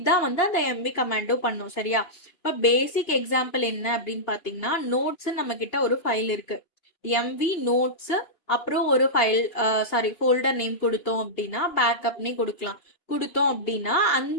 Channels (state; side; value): late; right; 2.8 ms